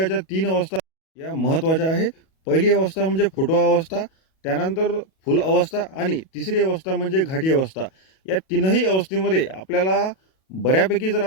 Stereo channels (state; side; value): late; right; 37 ms